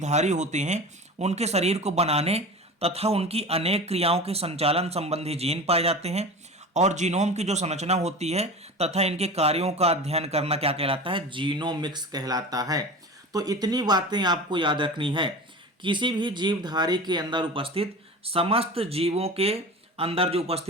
होते हैं उनके शरीर को बनाने तथा उनकी अनेक क्रियाओं के संचालन संबंधी जीन पाए जाते हैं, और जीनोम की जो संरचना होती है तथा इनके कार्यों का अध्ययन करना क्या कहलाता है, जीनोमिक्स कहलाता है। तो इतनी बातें आपको याद रखनी है। किसी भी जीवधारी के अंदर उपस्थित समस्त जीवों के अंदर जो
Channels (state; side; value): normal; both; correlation 0.33